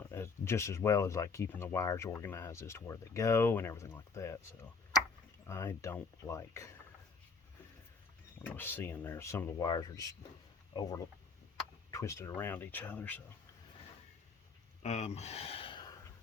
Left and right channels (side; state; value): right; quieter; 4.7 dB